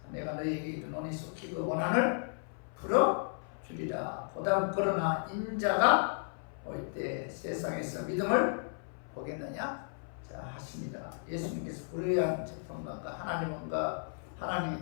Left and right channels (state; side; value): silent; right; 55 dB below the other